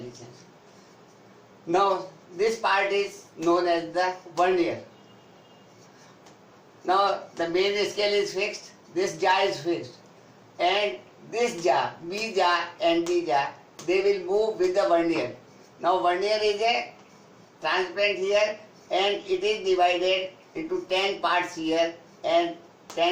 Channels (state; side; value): identical; both; correlation 1.00